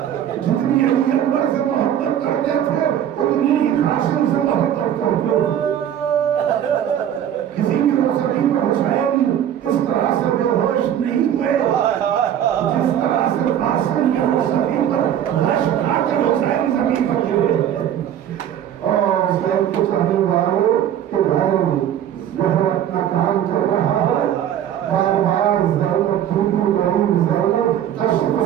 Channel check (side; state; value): left; quieter; 10.3 dB